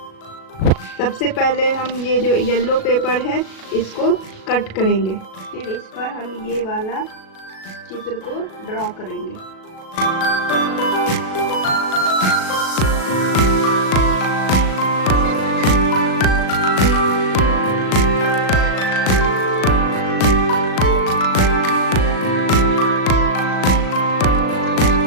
सबसे पहले हम ये जो येलो पेपर है इसको कट करेंगे, फिर इस पर हम ये वाला चित्र को ड्रॉ करेंगे।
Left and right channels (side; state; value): right; late; 37 ms